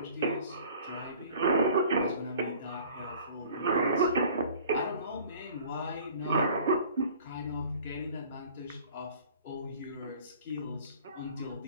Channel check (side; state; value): both; inverted; correlation -0.49